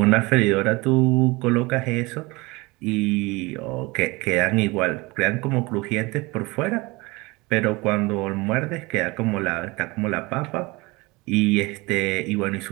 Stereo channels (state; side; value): quieter; left; 23.8 dB